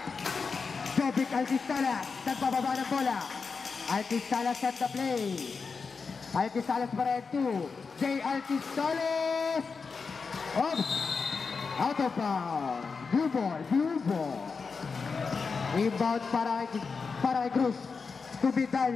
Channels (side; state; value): right; quieter; 5.0 dB